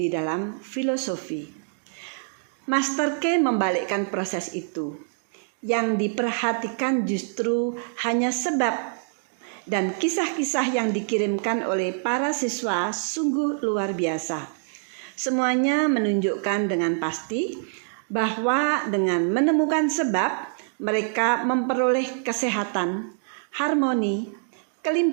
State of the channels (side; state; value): left; silent; digital silence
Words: dalam filosofi. Master Key membalikkan proses itu. Yang diperhatikan justru hanya sebab, dan kisah-kisah yang dikirimkan oleh para siswa sungguh luar biasa. Semuanya menunjukkan dengan pasti bahwa dengan menemukan sebab, mereka memperoleh kesehatan, harmoni,